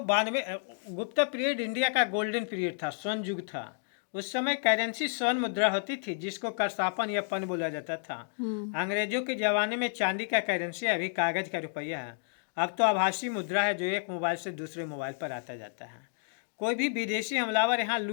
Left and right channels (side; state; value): right; silent; digital silence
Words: गुप्ता पीरियड इंडिया का गोल्डन पीरियड था, स्वर्ण युग था। उस समय करेंसी स्वर्ण मुद्रा होती थी, जिसको करसापन या पन बोला जाता था। अंग्रेजों के जमाने में चांदी का करेंसी, अभी कागज का रुपया है। अब तो आभासी मुद्रा है, जो एक मोबाइल से दूसरे मोबाइल पर आता जाता है। कोई भी विदेशी हमलावर यहाँ